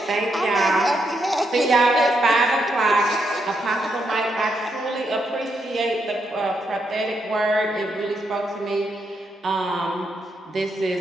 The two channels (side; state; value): both; normal; correlation 0.80